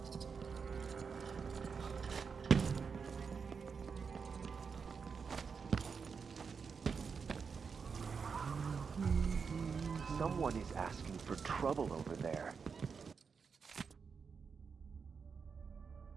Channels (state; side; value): quieter; left; 5.7 dB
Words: Someone is asking for trouble over there.